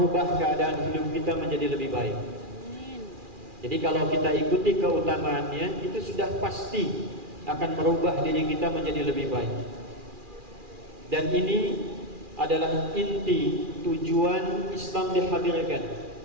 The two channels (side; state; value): left; late; 2.4 ms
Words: keadaan hidup kita menjadi lebih baik. Jadi kalau kita ikuti keutamaannya, itu sudah pasti akan merubah diri kita menjadi lebih baik. Dan ini adalah inti tujuan Islam dihadirkan,